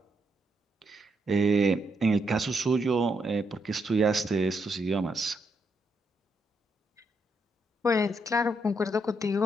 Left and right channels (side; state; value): both; normal; correlation 0.78